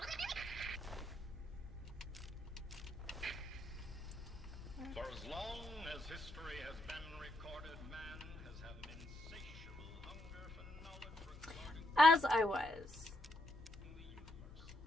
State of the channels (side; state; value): both; normal; correlation 0.79